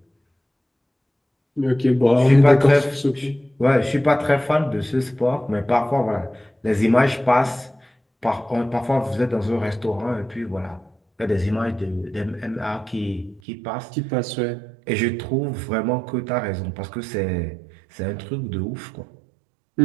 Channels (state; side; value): drops out; left; at 13.4 s